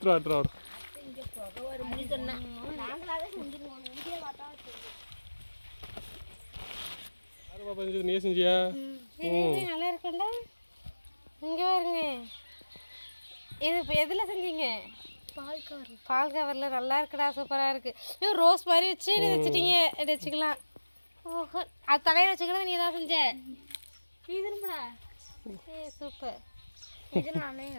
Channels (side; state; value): both; inverted; correlation -1.00